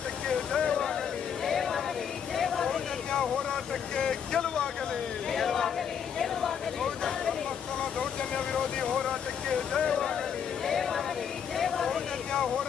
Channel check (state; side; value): quieter; right; 7.8 dB